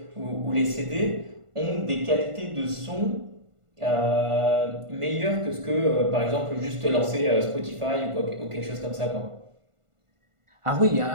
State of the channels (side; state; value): left; late; 1.5 ms